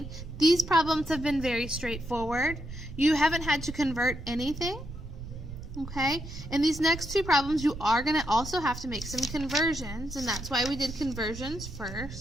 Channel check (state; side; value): noise; right; rumble, 11 dB below the sound